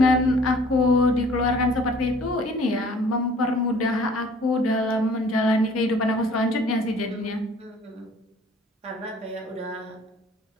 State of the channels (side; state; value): both; normal; correlation 0.53